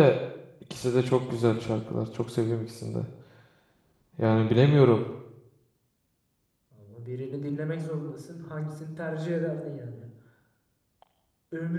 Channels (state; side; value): identical; both; correlation 1.00